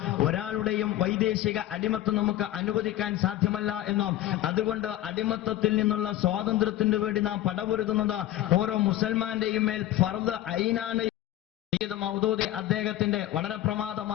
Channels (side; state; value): right; quieter; 13.9 dB